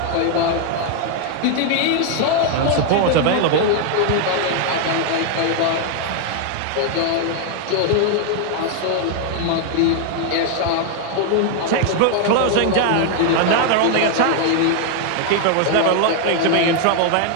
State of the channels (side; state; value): both; different; correlation 0.00